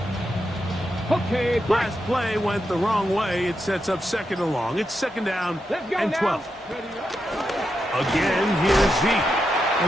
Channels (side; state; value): both; normal; correlation 0.85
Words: Okay, last play went the wrong way. It sets up second and long. It's second down and 12. Again, here's Zeke.